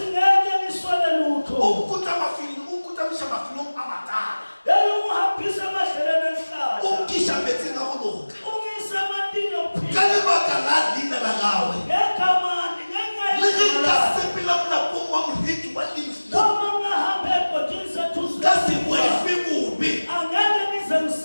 Ukuta misha mafilong amatala. Ukisha metsi na goloka. Ka lebaka la dina la gawe. Le ge ka sepela mona pong wa moreki wa lefu. Ka se boefe bobe.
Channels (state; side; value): inverted; both; correlation -1.00